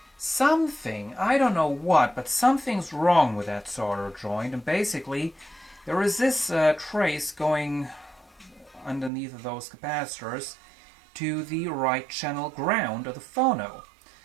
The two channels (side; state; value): left; drops out; at 9.1 s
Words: something, I don't know what, but something's wrong with that solder joint. And basically, there is this trace going underneath of those capacitors to the right channel ground of the phono.